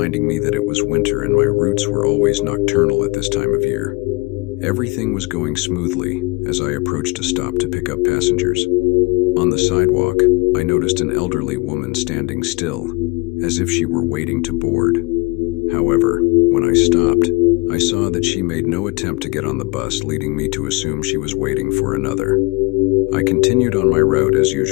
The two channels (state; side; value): quieter; right; 25.6 dB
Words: me that it was winter and my routes were always nocturnal at this time of year. Everything was going smoothly as I approached a stop to pick up passengers. On the sidewalk, I noticed an elderly woman standing still, as if she were waiting to board. However, when I stopped, I saw that she made no attempt to get on the bus, leading me to assume she was waiting for another. I continued on my route as